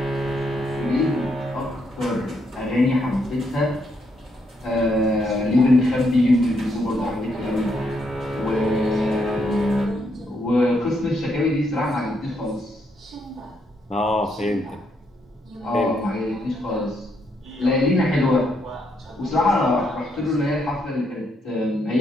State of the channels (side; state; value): both; normal; correlation 0.76